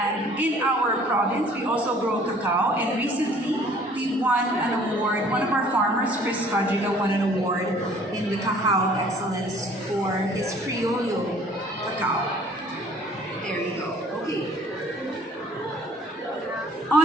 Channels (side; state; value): both; normal; correlation 0.54